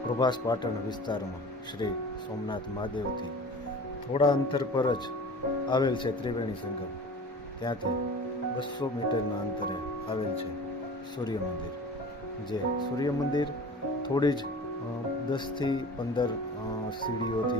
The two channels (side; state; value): both; normal; correlation 0.39